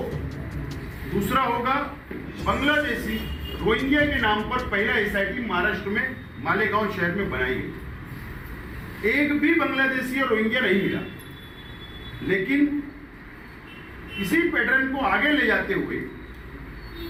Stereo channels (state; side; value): identical; both; correlation 1.00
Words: दूसरा होगा बांग्लादेशी रोहिंग्या के नाम पर पहला एसआईटी महाराष्ट्र में मालेगांव शहर में बनाई गई। एक भी बांग्लादेशी और रोहिंग्या नहीं मिला, लेकिन इसी पैटर्न को आगे ले जाते हुए